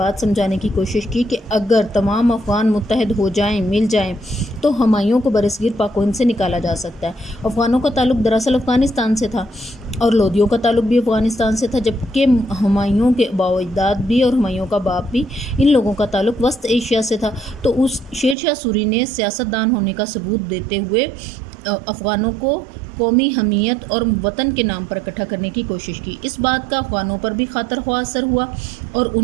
سمجھانے کی کوشش کی کہ اگر تمام افغان متحد ہو جائیں، مل جائیں تو ہمایوں کو برصغیر پاک و ہند سے نکالا جا سکتا ہے۔ افغانوں کا تعلق دراصل افغانستان سے تھا اور لودھیوں کا تعلق بھی افغانستان سے تھا، جبکہ ہمایوں کے آباء و اجداد بھی اور ہمایوں کا باپ بھی، ان لوگوں کا تعلق وسط ایشیا سے تھا۔ تو اس شیر شاہ سوری نے سیاستدان ہونے کا ثبوت دیتے ہوئے افغانوں کو قومی حمیت اور وطن کے نام پر اکٹھا کرنے کی کوشش کی۔ اس بات کا افغانوں پر بھی خاطر خواہ اثر ہوا اور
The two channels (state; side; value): drops out; left; at 18.4 s